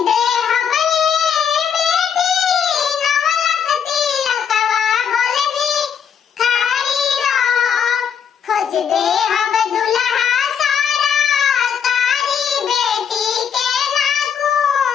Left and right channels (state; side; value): quieter; right; 7.6 dB